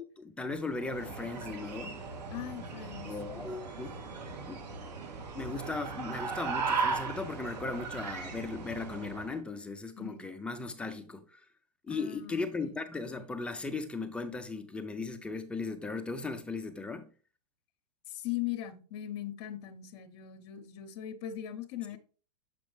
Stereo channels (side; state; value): both; normal; correlation 0.45